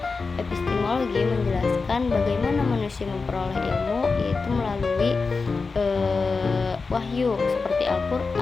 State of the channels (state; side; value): quieter; right; 4.4 dB